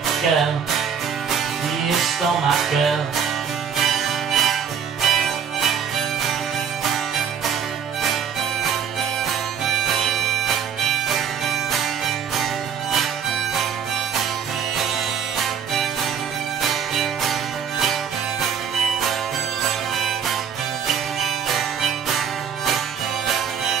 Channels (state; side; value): quieter; left; 7.5 dB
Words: girl. You stole my girl.